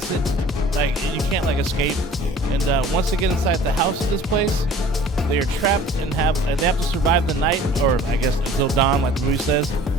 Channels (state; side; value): normal; both; correlation 0.48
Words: it, like you can't like escape. And once they get inside the house of this place, they are trapped and they have to survive the night, or I guess until dawn, like the movie says,